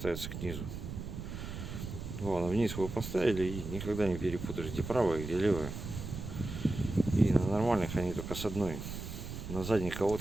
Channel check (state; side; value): noise; right; rumble, 8 dB below the sound